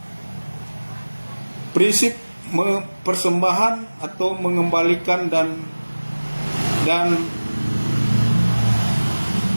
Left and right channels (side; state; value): both; inverted; correlation -1.00